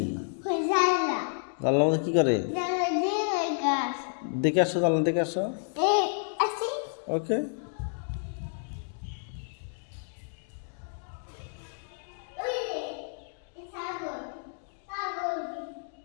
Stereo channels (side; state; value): right; silent; digital silence